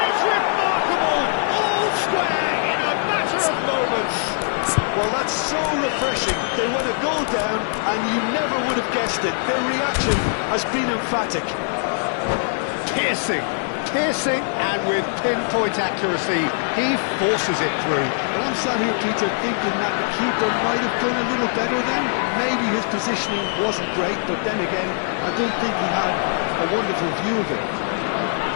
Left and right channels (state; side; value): silent; right; digital silence